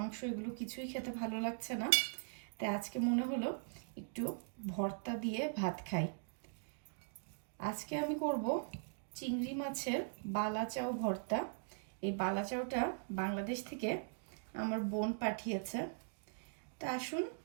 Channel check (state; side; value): silent; left; digital silence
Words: এগুলো কিছুই খেতে ভালো লাগছে না। তাই আজকে মনে হলো একটু ভর্তা দিয়ে ভাত খাই। আজকে আমি করব চিংড়ি মাছের বালাচাও ভর্তা। এই বালাচাওটা বাংলাদেশ থেকে আমার বোন পাঠিয়েছে। তা আসুন